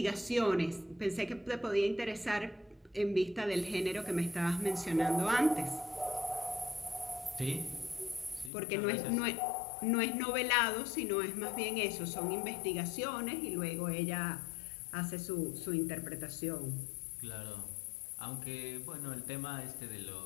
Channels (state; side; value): drops out; right; at 8.5 s